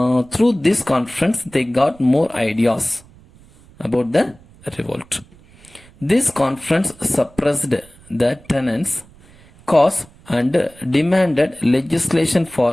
Through this conference, they got more ideas about the revolt. This conference suppressed the tenants' cause and demanded legislation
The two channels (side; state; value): right; noise; rumble, 26 dB below the sound